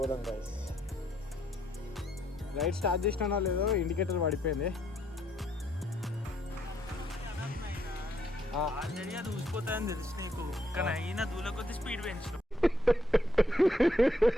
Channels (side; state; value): both; normal; correlation 0.72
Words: గైస్. రైడ్ స్టార్ట్ చేసినా లేదో ఇండికేటర్ పడిపోయింది. ఆల్రెడీ అది ఊసిపోతుందని తెలుసు నీకు, కానీ అయినా దూల కొద్ది స్పీడ్ పెంచు.